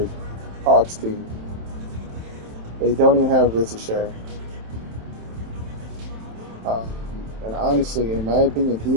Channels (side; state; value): left; late; 27 ms